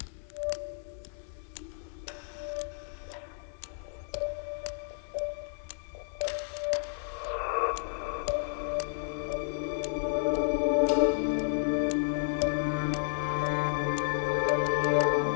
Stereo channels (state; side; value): silent; right; digital silence